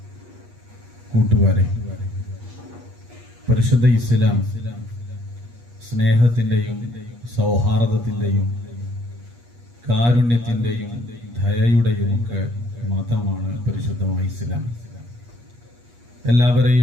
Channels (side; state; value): left; late; 8.4 ms